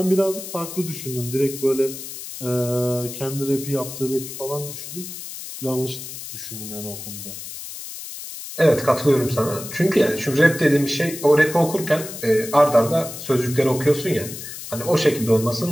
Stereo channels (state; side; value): noise; left; hiss, 10 dB below the sound